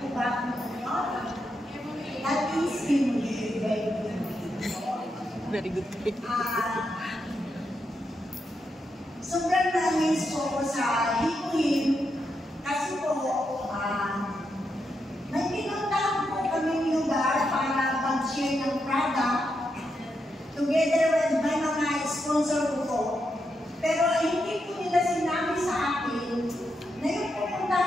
po ba kung ano? That is very good. Sobrang na-amaze po ako sa Hikuin kasi po may pinuntahan po kami lugar para mag-share ng product together with my mga sponsor ko po. Pero hindi po nila sinabi sa akin na yung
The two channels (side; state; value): both; normal; correlation 0.83